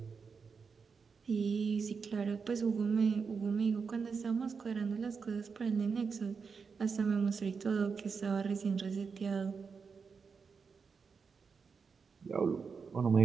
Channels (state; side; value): quieter; left; 5.5 dB